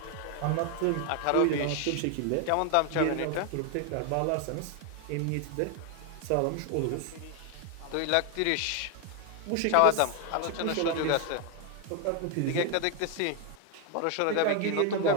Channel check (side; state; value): both; different; correlation 0.01